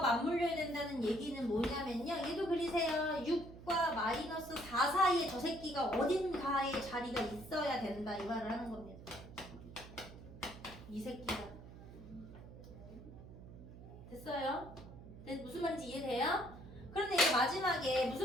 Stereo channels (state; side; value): noise; right; hum, 15 dB below the sound